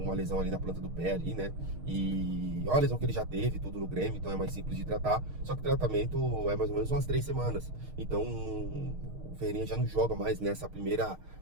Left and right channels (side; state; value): left; late; 6.5 ms